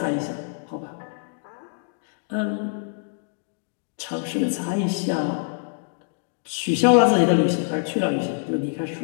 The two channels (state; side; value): silent; right; digital silence